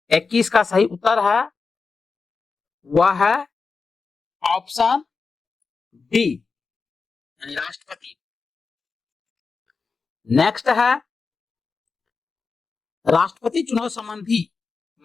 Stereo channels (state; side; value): quieter; right; 4.7 dB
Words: 21 का सही उत्तर है वह है ऑप्शन डी, यानी राष्ट्रपति। नेक्स्ट है, राष्ट्रपति चुनाव संबंधी